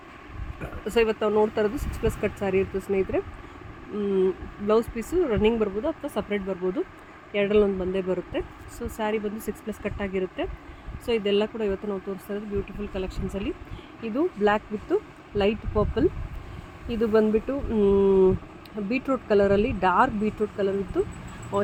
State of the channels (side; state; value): both; identical; correlation 1.00